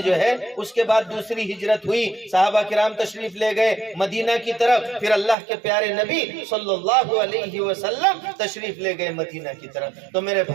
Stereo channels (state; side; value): drops out; left; at 5.4 s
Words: جو ہے اس کے بعد دوسری ہجرت ہوئی، صحابہ کرام تشریف لے گئے مدینہ کی طرف، پھر اللہ کے پیارے نبی صلی اللہ علیہ وسلم تشریف لے گئے مدینہ کی طرف۔ تو میرے